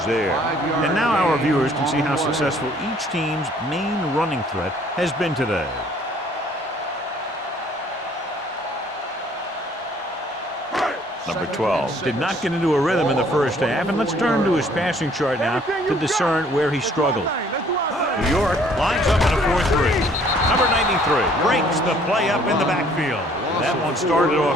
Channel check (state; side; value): normal; both; correlation 0.59